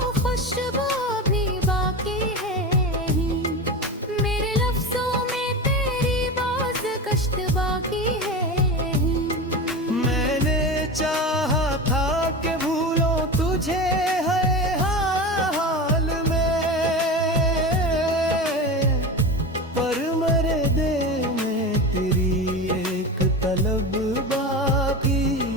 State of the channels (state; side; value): normal; both; correlation 0.26